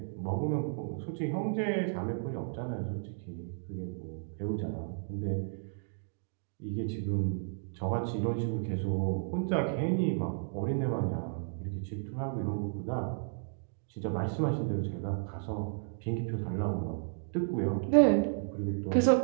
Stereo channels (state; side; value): silent; left; digital silence